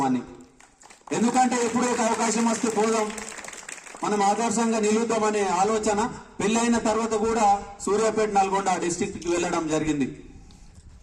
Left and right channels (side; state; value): both; identical; correlation 1.00